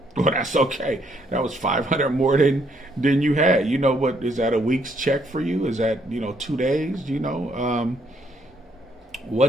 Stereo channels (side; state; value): both; normal; correlation 0.70